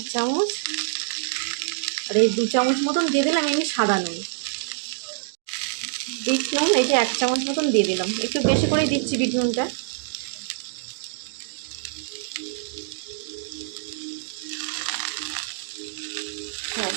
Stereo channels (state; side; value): silent; left; digital silence